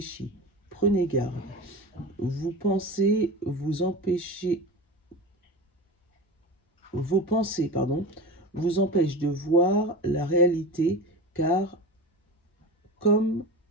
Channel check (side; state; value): both; normal; correlation 0.28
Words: Prenez garde. Vos pensées vous empêchent de voir la réalité, car